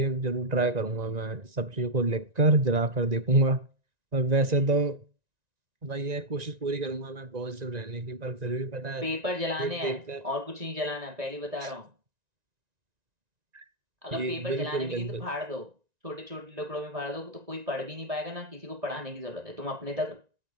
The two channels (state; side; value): late; left; 1.9 ms